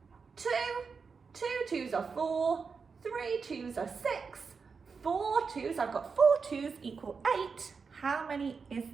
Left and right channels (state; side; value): quieter; left; 5.2 dB